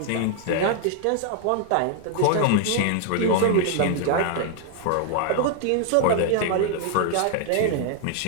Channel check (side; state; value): both; different; correlation 0.00